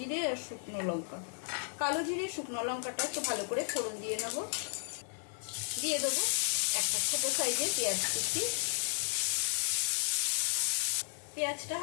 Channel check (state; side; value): silent; right; 55 dB below the other